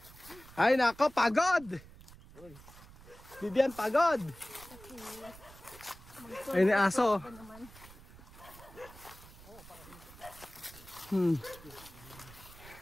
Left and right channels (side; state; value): right; noise; rumble, 19 dB below the sound